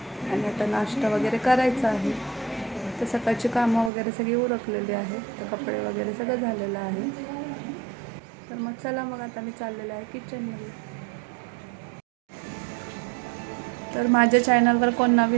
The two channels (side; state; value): left; drops out; at 3.9 s